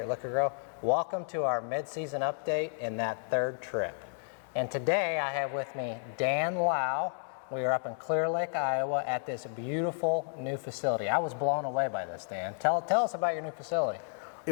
Liqui-Grow. Welcome to our mid-season update in that third trip. And today I have with me Dan Lau. We are up in Clear Lake, Iowa at this beautiful new facility. I was blown away by this, Dan. Tell us about your new facility.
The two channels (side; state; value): right; silent; digital silence